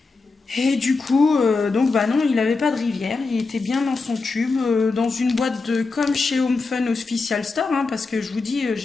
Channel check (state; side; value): quieter; right; 4.0 dB